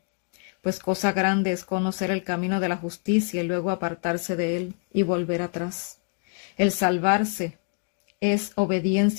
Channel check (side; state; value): right; quieter; 40.0 dB